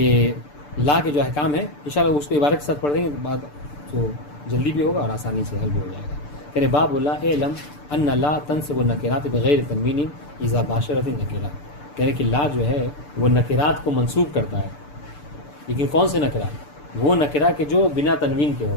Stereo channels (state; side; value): late; right; 6.8 ms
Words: لا کے جو احکام ہیں انشاءاللہ اس کو عبارت کے ساتھ پڑھ دیں گے، بعد تو جلدی بھی ہوگا اور آسانی سے حل بھی ہو جائے گا. کہنے باب اللہ علم ان لا تنصب النکرات بغیر تنوین اذا باشرت النکرہ. کہنے کہ لا جو ہے وہ نکرات کو منصوب کرتا ہے، لیکن کون سے نکرہ؟ وہ نکرہ کہ جو بنا تنوین کے ہو،